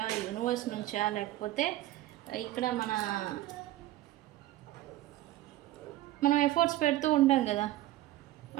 యూనివర్స్ నుంచా, లేకపోతే ఇక్కడ మనం ఎఫర్ట్స్ పెడుతూ ఉంటాం కదా,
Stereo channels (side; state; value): left; quieter; 15.3 dB